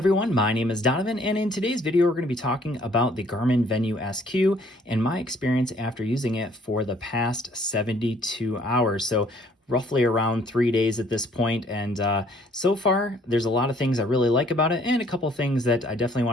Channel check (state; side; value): normal; both; correlation 0.61